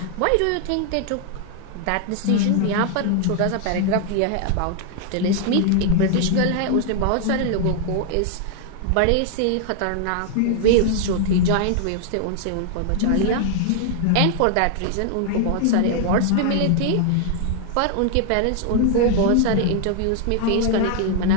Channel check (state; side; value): different; both; correlation 0.00